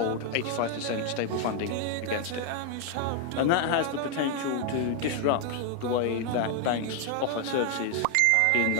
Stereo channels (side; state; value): both; different; correlation 0.00